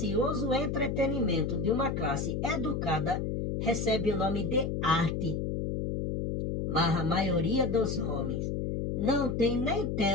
entretenimento de uma classe educada, recebe o nome de arte. Mas a maioria dos homens não tem nem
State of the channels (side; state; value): left; noise; hum, 1 dB below the sound